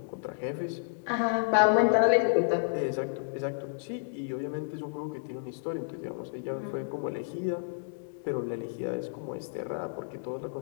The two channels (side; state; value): right; silent; digital silence